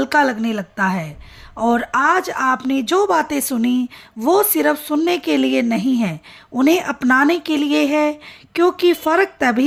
लगने लगता है। और आज आपने जो बातें सुनी वो सिर्फ सुनने के लिए नहीं है, उन्हें अपनाने के लिए है। क्योंकि फ़र्क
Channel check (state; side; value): identical; both; correlation 1.00